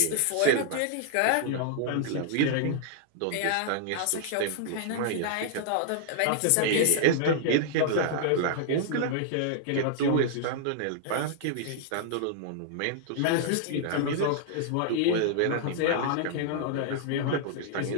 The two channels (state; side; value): different; both; correlation -0.01